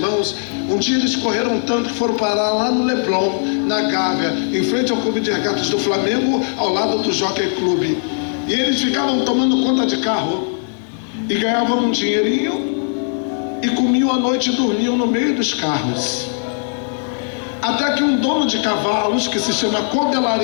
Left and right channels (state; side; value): silent; right; digital silence